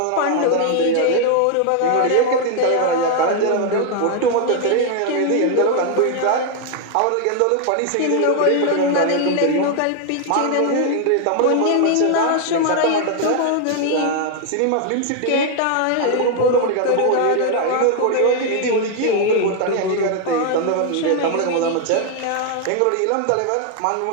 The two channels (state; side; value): different; both; correlation 0.00